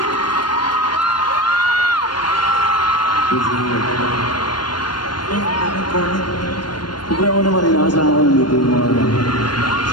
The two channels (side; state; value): right; late; 0.71 ms